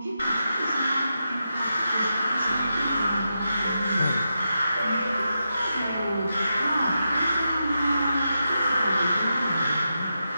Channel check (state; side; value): inverted; both; correlation -0.87